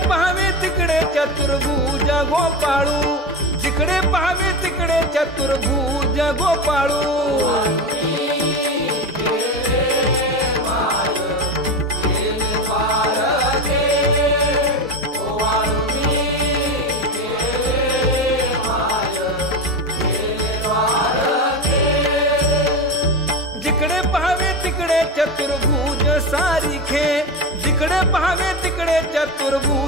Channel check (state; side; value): normal; both; correlation 0.21